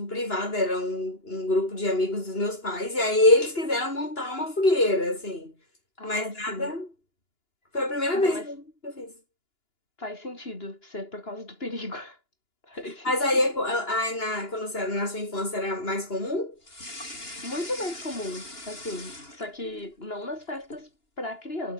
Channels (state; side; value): late; right; 2.9 ms